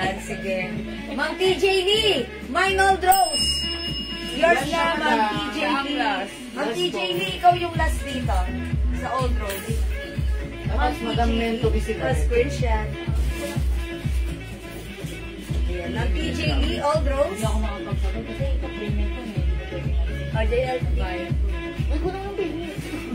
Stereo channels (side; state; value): both; identical; correlation 1.00